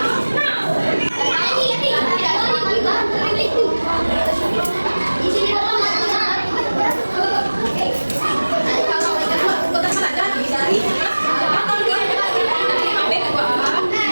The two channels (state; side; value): inverted; both; correlation -1.00